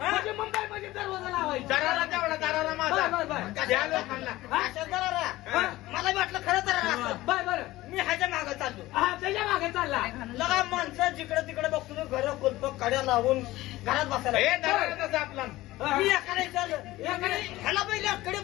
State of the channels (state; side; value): quieter; right; 17.5 dB